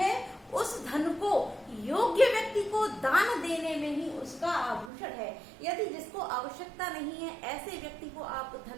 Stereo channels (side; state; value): left; drops out; at 4.9 s